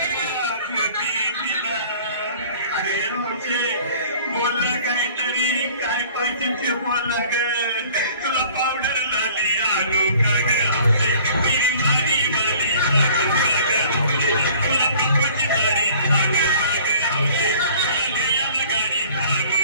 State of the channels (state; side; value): inverted; both; correlation -0.51